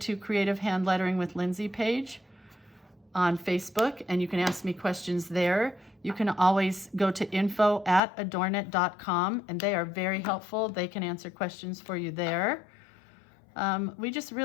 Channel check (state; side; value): drops out; right; at 8.0 s